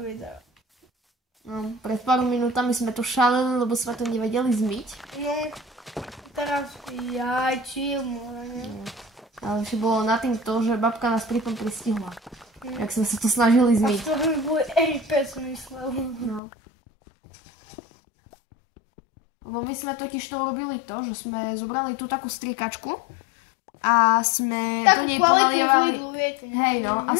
No, pred pár minútami sme to šaleli, lebo sme to nevedeli zmyť. No, teraz chill, môžeme. Ale ešte bolo na tým to, že babka nás pri tom pristihla. Jak sme sa to snažili zmyť. A to by boli RP, som myslel. No. Lebo my sme totiž to urobili to, že sme zobrali tú takú striekačku a sme do nej ponalievali... Hej no, a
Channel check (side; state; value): right; drops out; at 16.4 s